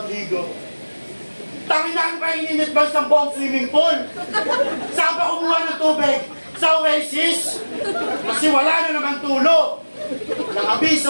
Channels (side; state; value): both; inverted; correlation -1.00